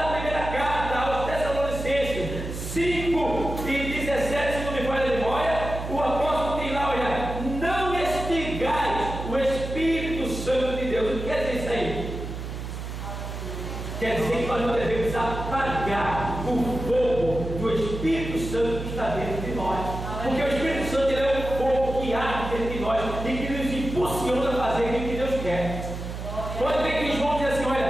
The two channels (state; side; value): noise; right; hum, 7 dB below the sound